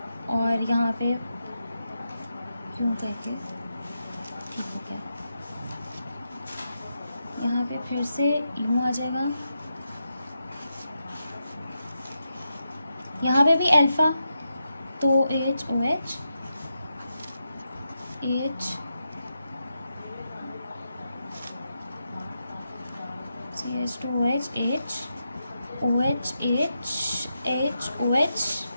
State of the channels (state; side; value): inverted; both; correlation -0.87